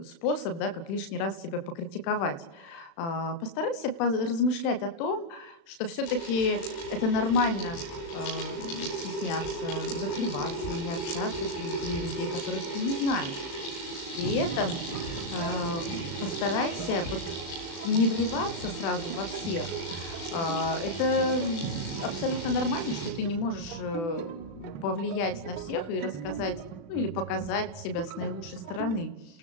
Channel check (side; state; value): right; late; 36 ms